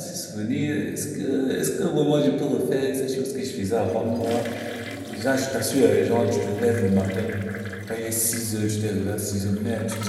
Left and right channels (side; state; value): both; identical; correlation 1.00